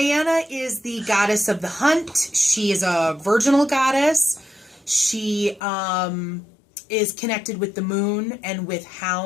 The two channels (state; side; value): drops out; right; at 5.6 s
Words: is the goddess of the hunt. She is a virginal goddess. She is connected with the moon and with